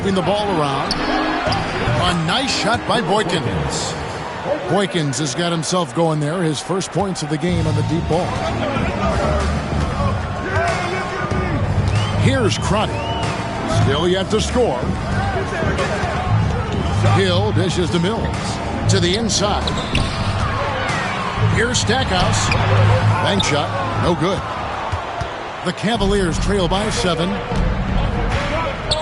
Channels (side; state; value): both; identical; correlation 1.00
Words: the ball around. A nice shot by Boykins. Boykins has got himself going there. His first points of the game on the deep ball. Here's Crotty. Still yet to score. Hill dishes to Mills. To the inside. Here's Stackhouse. Bank shot. No good. The Cavaliers trail by 7.